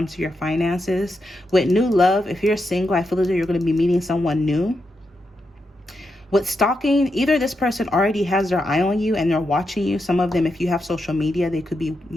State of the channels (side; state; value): both; normal; correlation 0.85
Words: to your finances. With new love, if you're single, I feel as though you're going to be meeting someone new. With stalking, either this person already has their eye on you and they're watching you. Some of them, if you have social media, they could be,